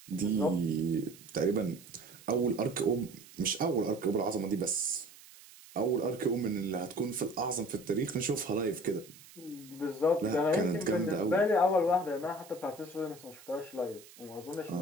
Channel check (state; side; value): noise; right; hiss, 21 dB below the sound